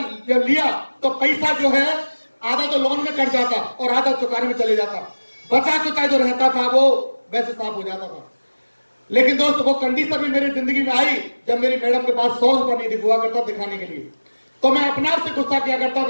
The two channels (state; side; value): inverted; both; correlation -1.00